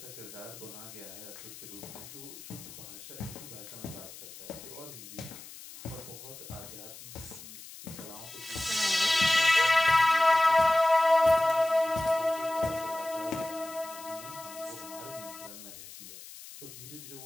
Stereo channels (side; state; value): left; noise; hiss, 15 dB below the sound